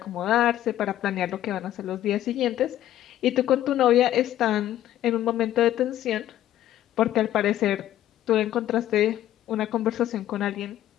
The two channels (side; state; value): right; quieter; 12.7 dB